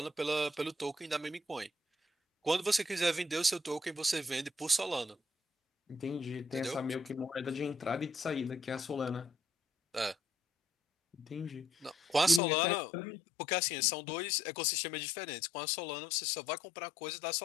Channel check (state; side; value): drops out; right; at 12.4 s